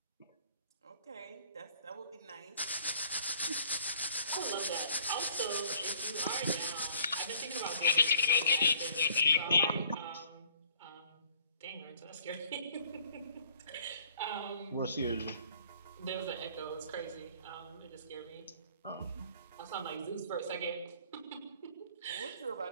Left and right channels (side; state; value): both; inverted; correlation -0.57